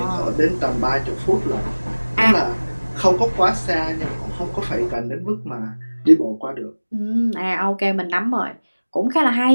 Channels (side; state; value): both; inverted; correlation -1.00